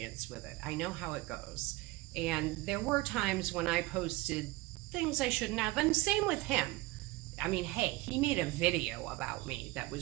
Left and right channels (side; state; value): left; quieter; 20.2 dB